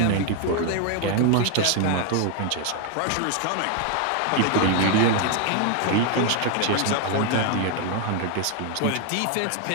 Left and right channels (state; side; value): different; both; correlation 0.01